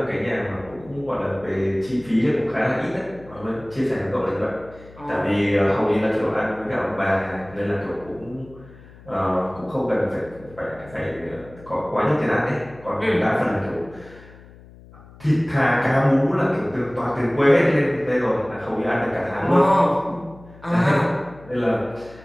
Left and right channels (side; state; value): left; noise; hum, 21 dB below the sound